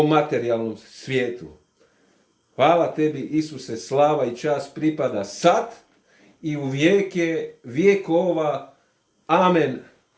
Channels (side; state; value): both; identical; correlation 1.00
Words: materijalnom svijetu. Hvala tebi, Isuse, slava i čast pripada sad i u vijeke vjekova. Amen.